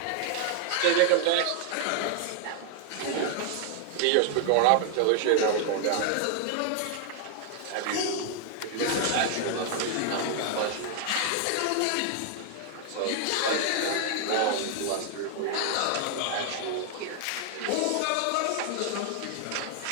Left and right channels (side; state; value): both; different; correlation 0.00